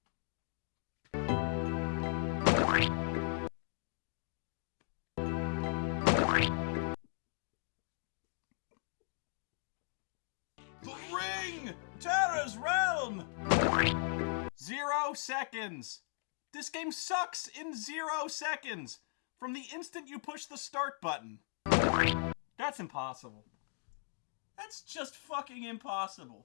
Terror's Realm! 0 seconds! This game sucks in 0 seconds! From the instant you push the start button. That's impossible. That's just fucking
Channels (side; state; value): right; silent; 53 dB below the other